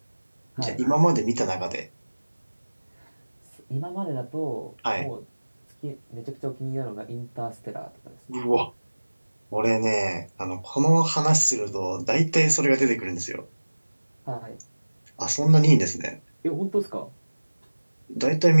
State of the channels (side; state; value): both; inverted; correlation -1.00